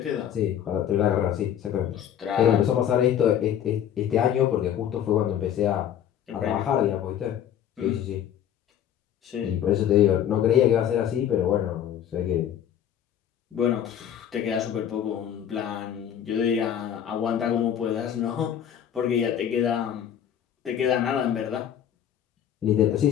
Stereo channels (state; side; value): quieter; right; 9.9 dB